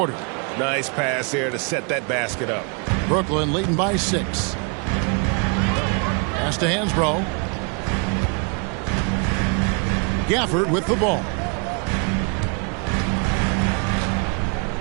Nice pass there to set that basket up. Brooklyn leading by 6. Pass to Hansbrough. Gafford with the ball.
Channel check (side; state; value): left; quieter; 36.0 dB